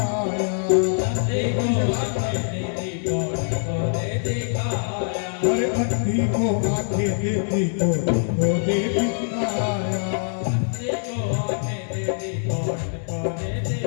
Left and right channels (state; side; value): silent; right; digital silence